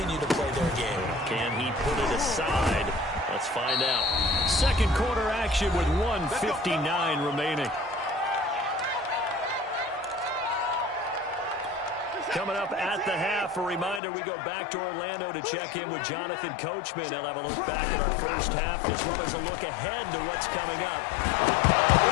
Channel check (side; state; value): right; drops out; at 14.0 s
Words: to play their game. Can he put it aside? Let's find out. Second quarter action with 1:59 remaining. Coming up at the half, a reminder, we go back to Orlando to check in with Jonathan Coachman. He'll have a look back at our first half as well as a look ahead to what's coming up.